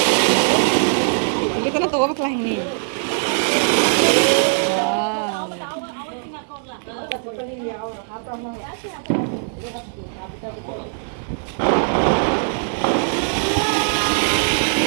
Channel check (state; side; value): silent; left; 62 dB below the other